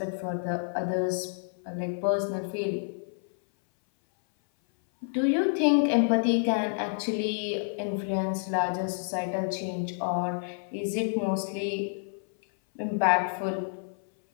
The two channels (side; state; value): right; silent; 57 dB below the other